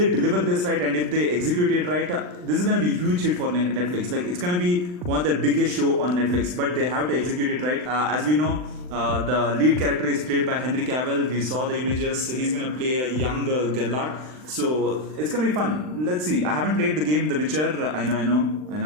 deliver this right and if they execute it right, this is gonna be a huge hit for Netflix. Like it's gonna be one of their biggest show on Netflix, but they have to execute it right. As we know, the lead character is played by Henry Cavill. We saw the images. He's gonna play a young Geralt. So it's gonna be fun. Let's see. I haven't played the game The Witcher. I know.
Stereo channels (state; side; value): late; left; 39 ms